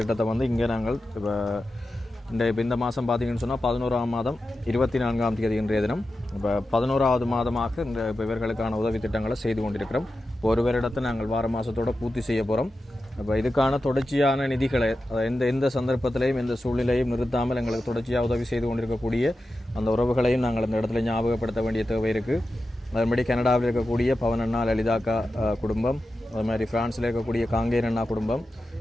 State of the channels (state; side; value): normal; both; correlation 0.92